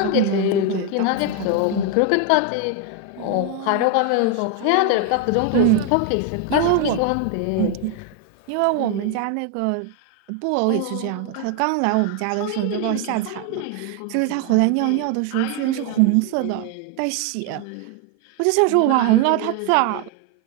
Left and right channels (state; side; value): different; both; correlation 0.01